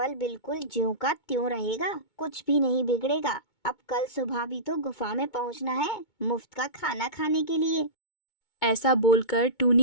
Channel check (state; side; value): late; right; 2.2 ms